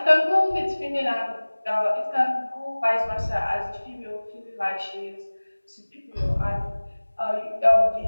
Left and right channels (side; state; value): both; inverted; correlation -1.00